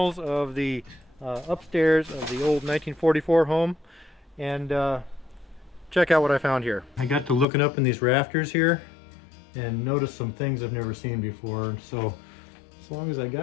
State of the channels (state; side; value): drops out; right; at 7.5 s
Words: of the upstairs of the old 1944 home, and check out what I found here. I got to looking up in these rafters here and noticed some things I've never seen before. So as long as I